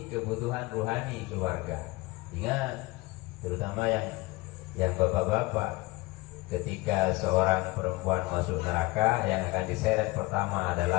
kebutuhan rohani keluarga. Ingat, terutama yang bapak-bapak, ketika seorang perempuan masuk neraka, yang akan diseret pertama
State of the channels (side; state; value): right; quieter; 22.0 dB